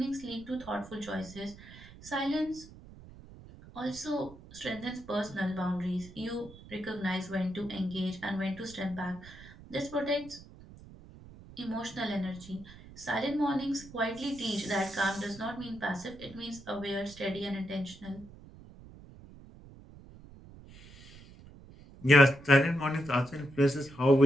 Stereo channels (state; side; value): noise; right; rumble, 19 dB below the sound